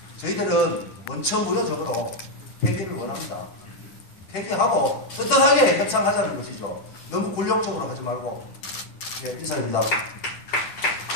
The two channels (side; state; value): right; late; 10 ms